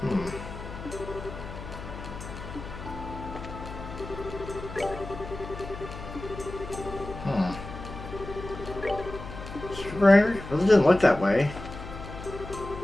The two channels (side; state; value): left; noise; hum, 11 dB below the sound